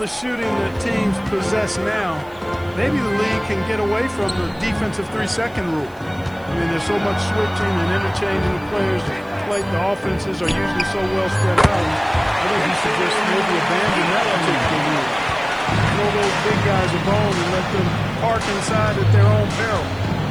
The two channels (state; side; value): noise; right; hiss, 29 dB below the sound